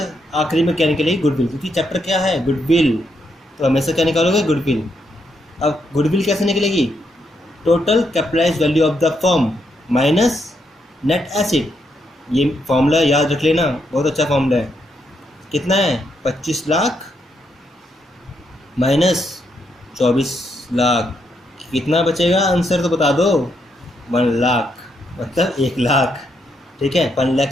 आखिरी में क्या निकलेगी, गुडविल, क्योंकि चैप्टर क्या है, गुडविल, तो हमेशा क्या निकालोगे, गुडविल। अब गुडविल कैसे निकलेगी, total capitalised value of the firm minus net asset, ये फॉर्मूला याद रख लेना, बहुत अच्छा फॉर्मूला है। कितना है, 25 लाख माइनस 24 लाख, कितना बचेगा, आंसर तो बता दो, 1 लाख, मतलब 1 लाख, ठीक है, 1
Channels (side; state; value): both; normal; correlation 0.78